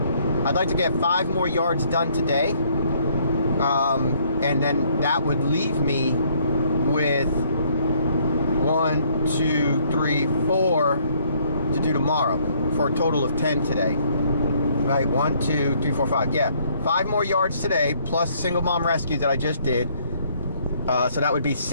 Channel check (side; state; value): both; inverted; correlation -0.65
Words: 5 more yards done today. And then that would leave me with 1, 2, 3, 4 to do tomorrow, for a total of 10 today. Right, 1, 2, 3, 4, 5. Yeah, 5 more yards today, plus Single Mom Rescue that I just did. So that would be